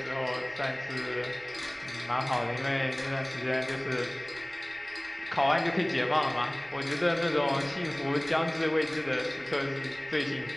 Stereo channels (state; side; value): noise; right; rumble, 28 dB below the sound